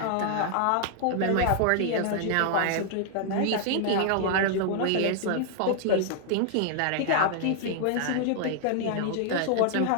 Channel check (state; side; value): different; both; correlation 0.00